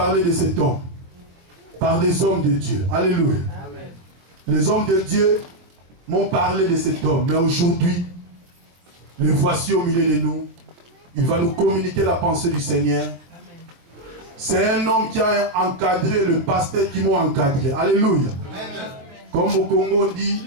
de cet homme par des hommes de Dieu. Alléluia. Les hommes de Dieu m'ont parlé de cet homme. Mais aujourd'hui, le voici au milieu de nous. Il va nous communiquer la pensée du Seigneur. C'est un homme qui a encadré le pasteur qui m'a encadré. Alléluia. Comme au Congo on dit,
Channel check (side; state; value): left; late; 24 ms